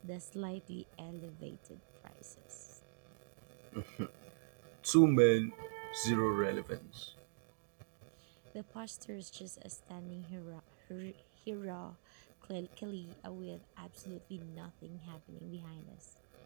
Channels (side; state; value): left; silent; digital silence